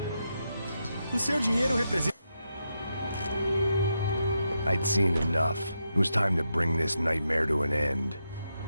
O seu dinheiro representa... I'd seen enough. It was time to bring this nightmare to an end.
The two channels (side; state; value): both; inverted; correlation -0.84